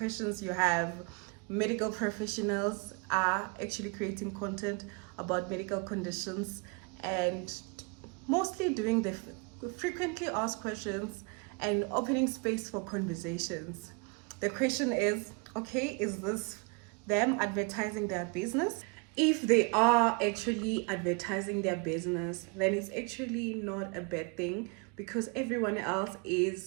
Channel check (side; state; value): left; quieter; 32.8 dB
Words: you have. Medical professionals are actually creating content about medical conditions and mostly doing the frequently asked questions and opening space for conversations. The question is, okay, is this them advertising their business? If they are actually advertising their business, then it's actually not a bad thing because everyone else